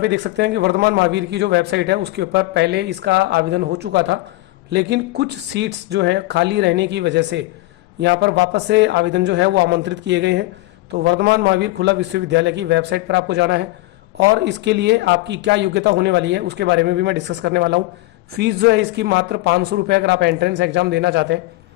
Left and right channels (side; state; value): right; quieter; 19.0 dB